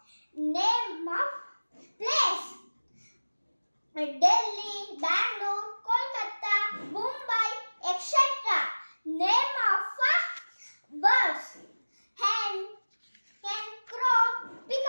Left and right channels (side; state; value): both; inverted; correlation -1.00